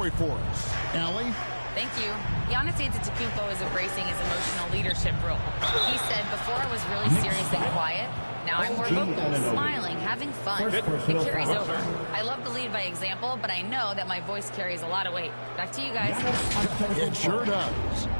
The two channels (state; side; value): inverted; both; correlation -1.00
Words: for us. Allie? Thank you. Giannis Antetokounmpo is embracing his emotional leadership role. He said, before I was really serious and quiet, now I'm more vocal, smiling, having fun. It carries over. I love to lead by example, but I know that my voice carries a lot of weight. Back to you guys. It sure does.